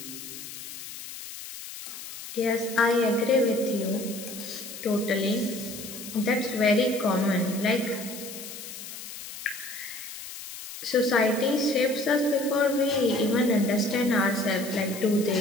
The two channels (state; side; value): noise; left; hiss, 11 dB below the sound